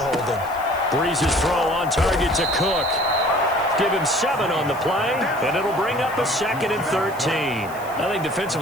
Breeze's throw on target to Cook. Give him 7 on the play, and it'll bring up a 2nd and 13. I think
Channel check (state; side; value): noise; left; hiss, 20 dB below the sound